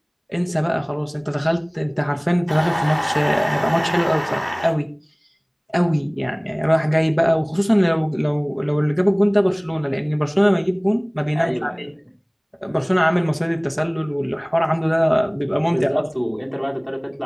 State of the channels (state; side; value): identical; both; correlation 1.00